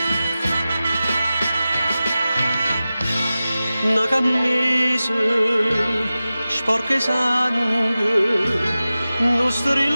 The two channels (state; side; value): inverted; both; correlation -0.95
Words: Una camisa sporca di sangue, non